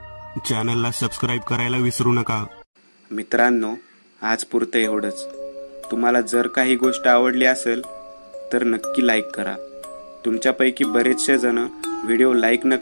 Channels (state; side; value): inverted; both; correlation -1.00